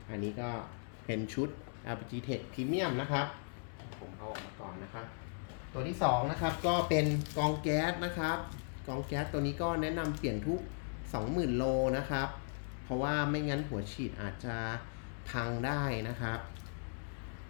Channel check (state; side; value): silent; right; digital silence